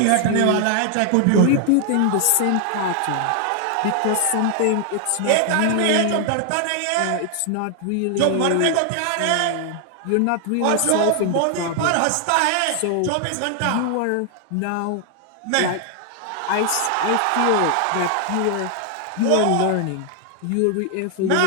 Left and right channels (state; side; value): different; both; correlation 0.00